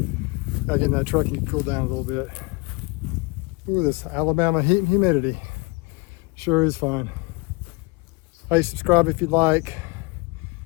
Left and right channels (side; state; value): right; quieter; 27.6 dB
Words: Gotta get in that truck and cool down a little bit. Ooh, this Alabama heat and humidity sure is fun. Hey, subscribe if you'd like.